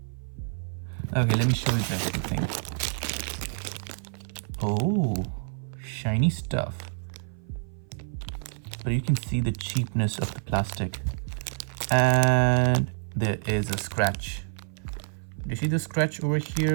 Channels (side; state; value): left; silent; 55 dB below the other